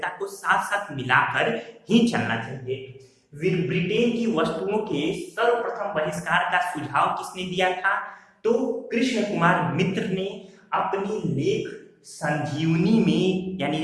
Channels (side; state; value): both; identical; correlation 1.00